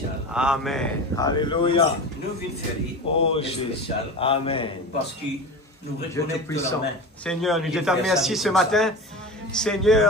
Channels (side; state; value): both; normal; correlation 0.29